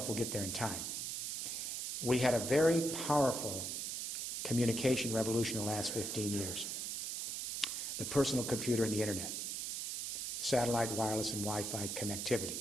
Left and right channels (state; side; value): noise; right; hiss, 3 dB below the sound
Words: we'll get there in time. We had a very powerful communication revolution in the last 15 years. The personal computer and the internet, satellite, wireless, and Wi-Fi connectivity.